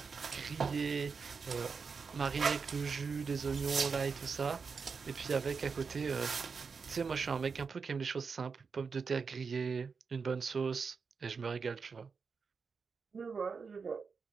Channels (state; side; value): quieter; left; 5.3 dB